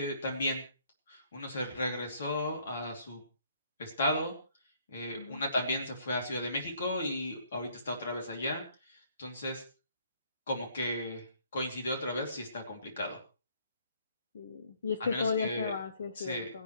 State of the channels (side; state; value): both; inverted; correlation -0.64